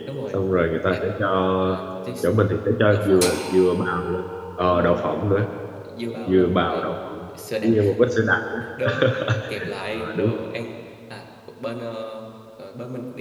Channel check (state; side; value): identical; both; correlation 1.00